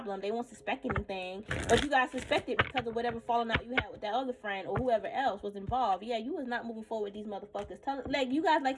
They won't suspect anything, but you guys suspect it because of whatever falling out you had with that other friend or whoever else was involved. Yeah, you was not moving forward with these motherfuckers. Like, you guys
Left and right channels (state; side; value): identical; both; correlation 1.00